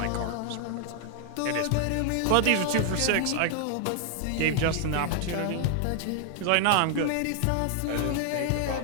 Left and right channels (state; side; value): different; both; correlation 0.00